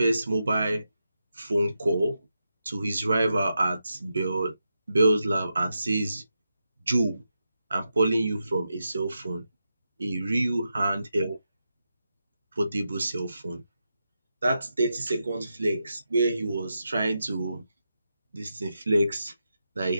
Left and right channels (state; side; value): inverted; both; correlation -0.87